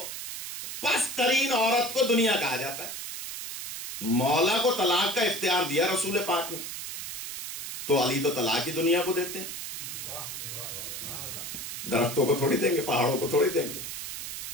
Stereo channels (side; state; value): right; noise; hiss, 7 dB below the sound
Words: پست ترین عورت کو دنیا کہا جاتا ہے. مولا کو طلاق کا اختیار دیا رسول پاک نے, تو علی تو طلاق ہی دنیا کو دیتے ہیں. درختوں کو تھوڑی دیں گے, پہاڑوں کو تھوڑی دیں گے.